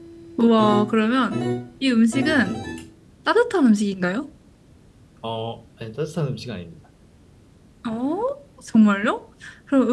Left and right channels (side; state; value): both; identical; correlation 1.00